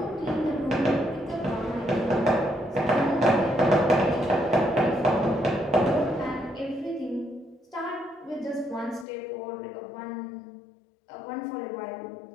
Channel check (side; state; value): right; drops out; at 9.1 s